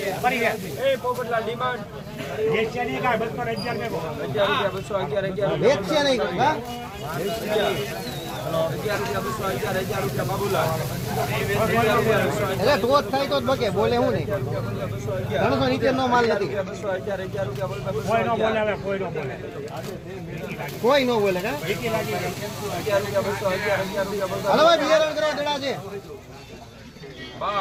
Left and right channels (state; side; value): identical; both; correlation 1.00